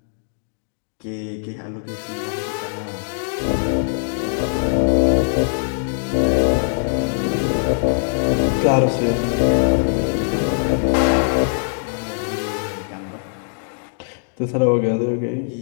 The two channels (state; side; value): silent; right; digital silence